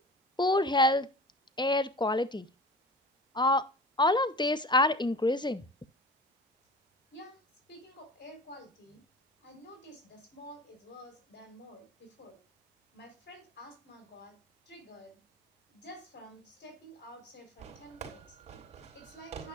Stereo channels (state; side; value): normal; both; correlation 0.38